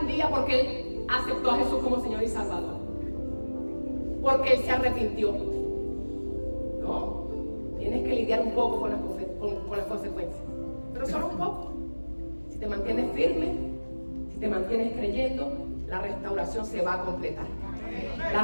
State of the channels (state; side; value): inverted; both; correlation -1.00